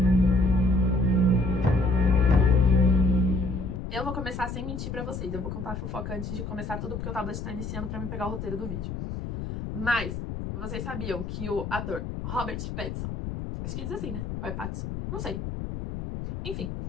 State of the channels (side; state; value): left; noise; rumble, 6 dB below the sound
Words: Eu vou começar sem mentir pra vocês. Eu vou contar a fofoca antes de começar tudo, porque o tablet tá iniciando pra me pegar o roteiro do vídeo. Mas, vocês sabiam que o ator Robert Pattinson, acho que diz assim, né? Ou é Pattinson? Não sei. Enfim,